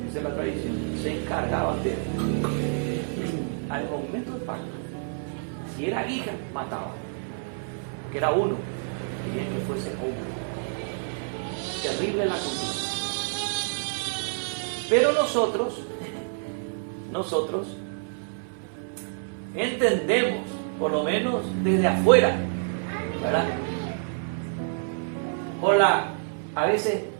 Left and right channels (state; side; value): silent; left; 60 dB below the other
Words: dice la tradición, se encargaban de, al momento del parto, si era hija, mataban, que era uno, y bien que fuese hombre. Terrible la cultura. Pero nosotros entendemos, por lo menos desde afuera, ¿verdad?, por la a veces